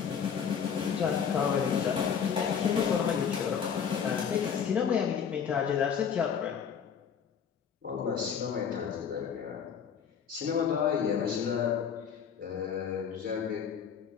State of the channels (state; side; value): quieter; right; 7.4 dB